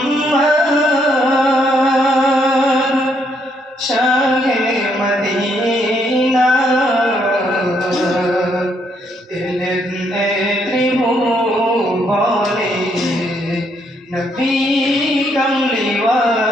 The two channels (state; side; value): normal; both; correlation 0.73